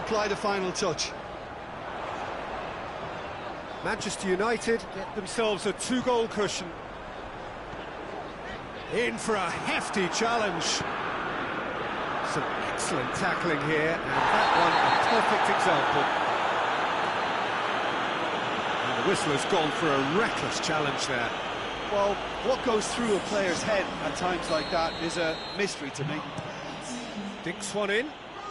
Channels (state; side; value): identical; both; correlation 1.00